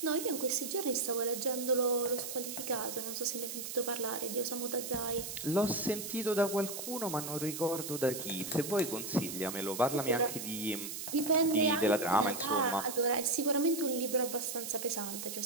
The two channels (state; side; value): noise; right; hiss, 7 dB below the sound